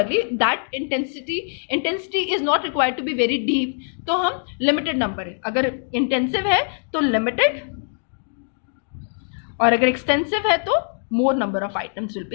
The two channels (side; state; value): right; silent; digital silence